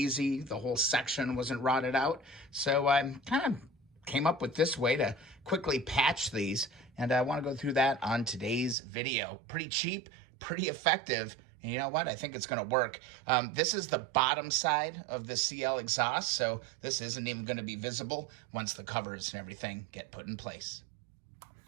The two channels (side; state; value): left; drops out; at 8.8 s